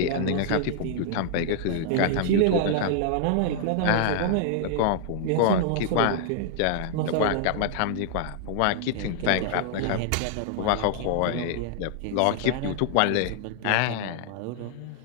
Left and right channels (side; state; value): both; different; correlation -0.01